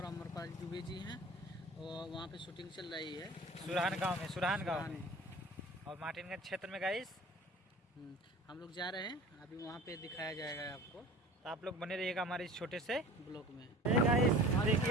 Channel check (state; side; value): normal; both; correlation 0.42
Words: अमरपाल दुबे जी हैं और वहाँ पे शूटिंग चल रही है सुरहान गांव में और मार्टिनगंज क्षेत्र में गाइस हम लोग जा रहे हैं। अभी वहाँ पे दिखाया जाएगा आपको, तो आप लोग बने रहिएगा हमारे इस छोटे से ब्लॉग में। गाइस